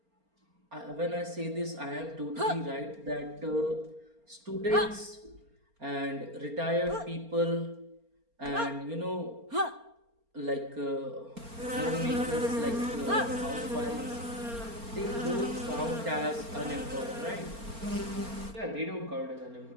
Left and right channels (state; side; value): late; left; 4.3 ms